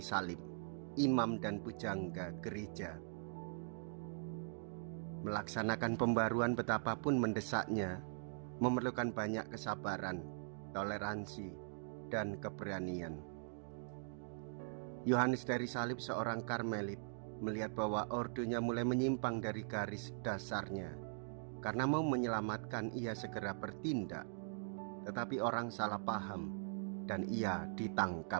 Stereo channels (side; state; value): left; silent; digital silence